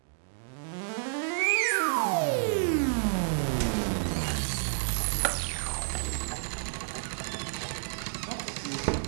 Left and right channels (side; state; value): left; silent; digital silence